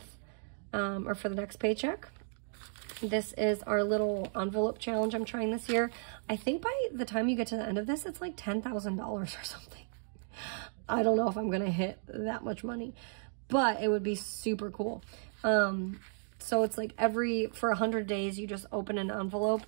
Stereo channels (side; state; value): left; silent; digital silence